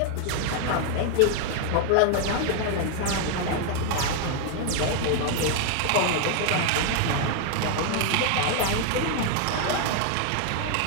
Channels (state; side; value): different; both; correlation 0.00